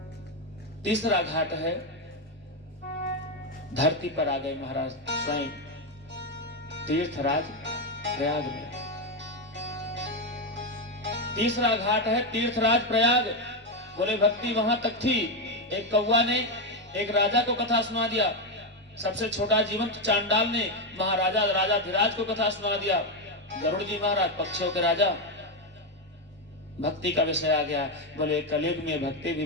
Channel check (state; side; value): normal; both; correlation 0.07